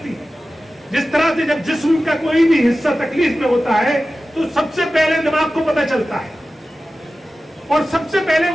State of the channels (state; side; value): normal; both; correlation 0.95